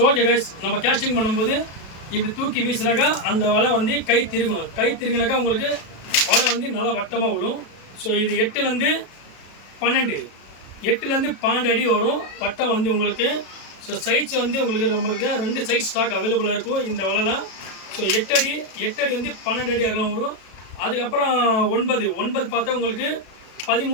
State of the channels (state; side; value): late; right; 36 ms